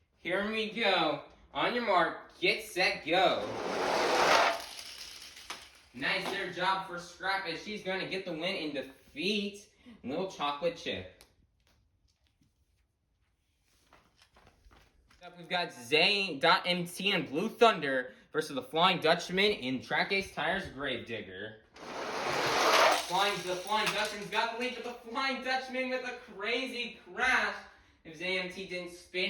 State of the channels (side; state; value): both; identical; correlation 1.00